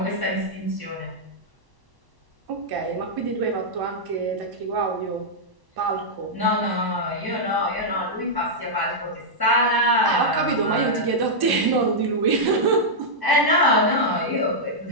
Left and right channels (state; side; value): late; left; 1.1 ms